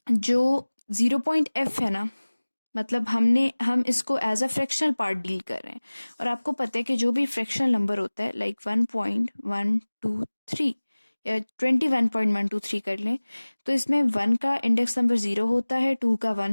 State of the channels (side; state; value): both; inverted; correlation -1.00